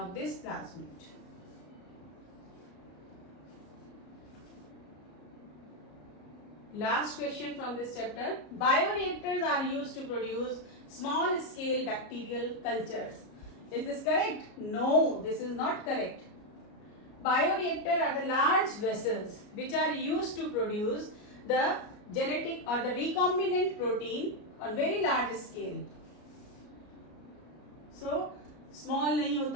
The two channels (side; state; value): right; late; 33 ms